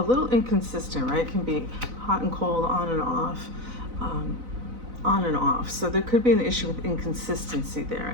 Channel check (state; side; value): late; left; 4.0 ms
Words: little inconsistent, right? Can be hot and cold, on and off. So there could be an issue with inconsistency there,